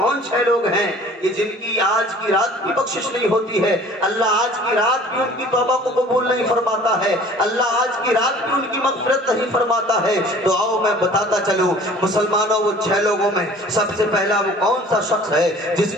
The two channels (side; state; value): both; normal; correlation 0.49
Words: 6 لوگ ہیں کہ جن کی آج کی رات بھی بخشش نہیں ہوتی ہے. اللہ آج کی رات بھی ان کی توبہ کو قبول نہیں فرماتا ہے، اللہ آج کی رات بھی ان کی مغفرت نہیں فرماتا ہے. تو آؤ میں بتاتا چلوں مسلمانوں، وہ 6 لوگوں میں سب سے پہلا وہ کون سا شخص ہے جس